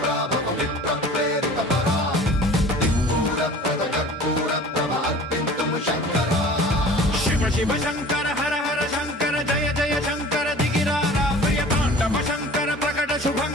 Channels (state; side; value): normal; both; correlation 0.44